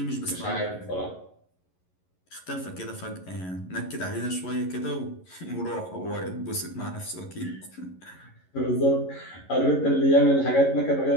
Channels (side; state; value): right; late; 11 ms